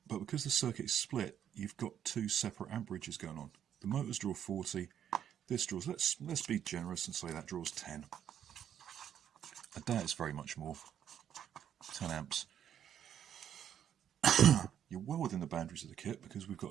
but because the circuit is split, you've got 2 separate amperages going on. The motors draw 40. This draws, let's be generous and say that draws 10. I doubt it's very much more. 10 amps. You're well within the boundaries of the kit because we've got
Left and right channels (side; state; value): left; quieter; 9.6 dB